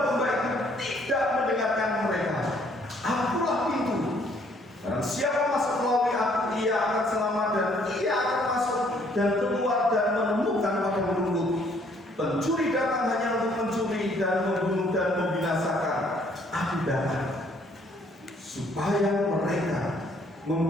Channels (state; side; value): normal; both; correlation 0.64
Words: itu tidak mendengarkan mereka. Akulah pintu. Barang siapa masuk melalui aku, ia akan selamat dan ia akan masuk dan keluar dan menemukan padang rumput. Pencuri datang hanya untuk mencuri dan membunuh dan membinasakan. Aku datang supaya mereka